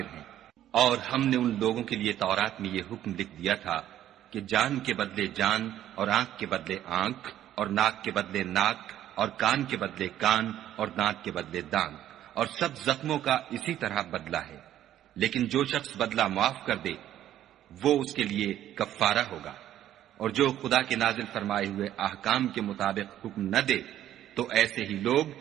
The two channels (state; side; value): quieter; left; 12.0 dB